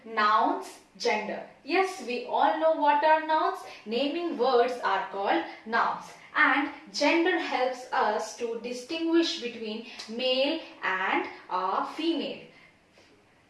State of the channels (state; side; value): identical; both; correlation 1.00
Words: nouns, gender. Yes, we all know what are nouns. Naming words are called nouns. And gender helps us to distinguish between male and female.